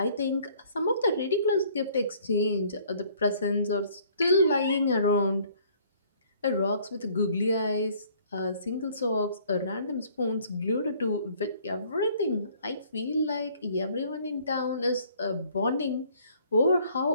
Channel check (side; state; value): both; inverted; correlation -0.59